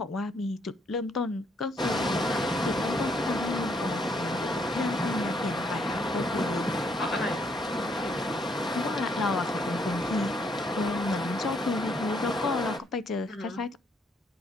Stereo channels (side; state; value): both; normal; correlation 0.71